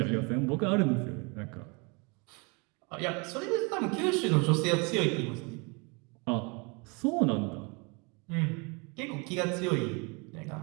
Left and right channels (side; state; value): left; quieter; 30.8 dB